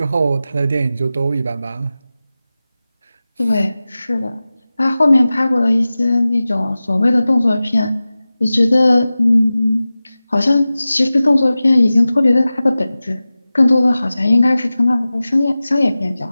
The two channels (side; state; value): both; inverted; correlation -0.96